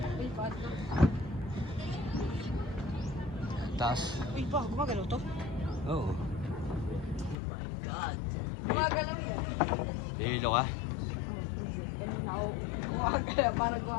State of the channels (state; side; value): drops out; right; at 7.4 s